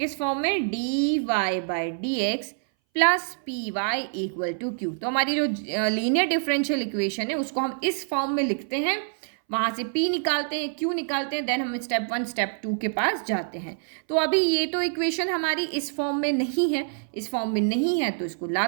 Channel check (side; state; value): left; silent; 60 dB below the other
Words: फॉर्म में? dy by d x plus p y equal to q. तो हमारी जो लीनियर डिफरेंशियल इक्वेशन है उसको हम इस फॉर्म में लिखते हैं, वहाँ से P निकालते हैं, Q निकालते हैं, देन हम स्टेप 1 स्टेप 2 के पास जाते हैं। तो अभी ये तो इक्वेशन हमारी इस फॉर्म में नहीं है, इस फॉर्म में नहीं है तो इसको